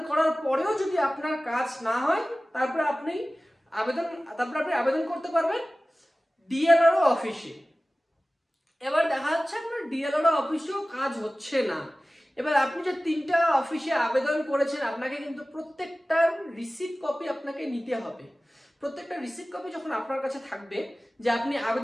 করার পরেও যদি আপনার কাজ না হয়, তারপরে আপনি আবেদন করতে পারবেন ডিএলআরও অফিসে। এবার দেখা যাচ্ছে আপনার ডিএলআরও অফিসেও কাজ হচ্ছে না। এবার আপনি যে 3টা অফিসে আবেদন করেছেন, আপনাকে কিন্তু প্রত্যেকটার রিসিপ্ট কপি আপনাকে নিতে হবে। প্রত্যেকটা রিসিপ্ট কপি যখন আপনার কাছে থাকবে যে আপনি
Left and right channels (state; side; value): normal; both; correlation 0.97